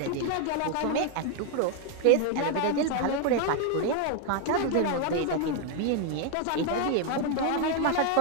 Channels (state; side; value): different; both; correlation 0.00